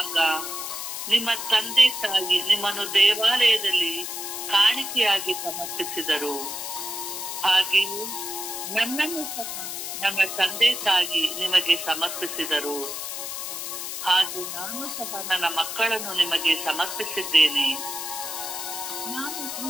ನಿಮ್ಮ ತಂದೆ ತಾಯಿ ನಿಮ್ಮನ್ನು ದೇವಾಲಯದಲ್ಲಿ ಕಾಣಿಕೆಯಾಗಿ ಸಮರ್ಪಿಸಿದರು. ಹಾಗೆಯೇ ನನ್ನನ್ನು ಸಹ ನನ್ನ ತಂದೆ ತಾಯಿ ನಿಮಗೆ ಸಮರ್ಪಿಸಿದರು. ಹಾಗೆ ನಾನು ಸಹ ನನ್ನ ಮಕ್ಕಳನ್ನು ನಿಮಗೆ ಸಮರ್ಪಿಸಿದ್ದೇನೆ. ನಾನು ಈ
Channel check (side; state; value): left; noise; hiss, 6 dB below the sound